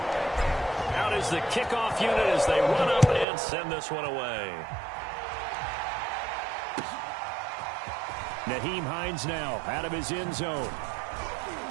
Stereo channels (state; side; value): drops out; left; at 3.2 s